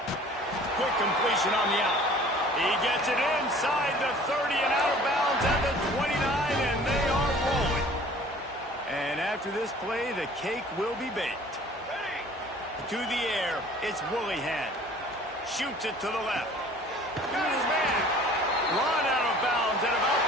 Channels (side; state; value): both; normal; correlation 0.49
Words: Quick completion on the out. He gets it inside the 30 and out of bounds at the 29, and they are rolling. And after this play, the cake will be baked. To the air, it's Woolihan. Shoots it to the left. Got his man. Run out of bounds at about